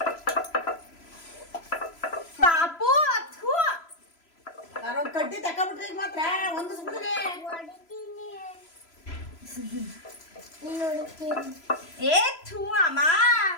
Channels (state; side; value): late; right; 3.0 ms